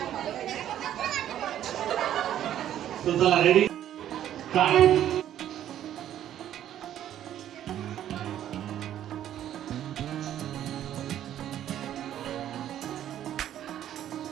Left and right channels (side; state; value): left; quieter; 11.3 dB